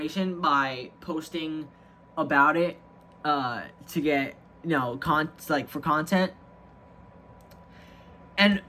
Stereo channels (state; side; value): identical; both; correlation 1.00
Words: by posting about it, to get, you know, for content, and